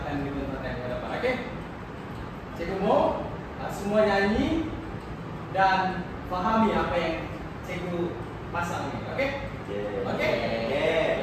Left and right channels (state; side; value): identical; both; correlation 1.00